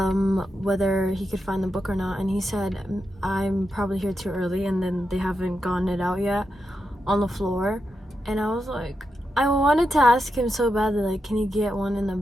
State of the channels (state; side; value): normal; both; correlation 0.86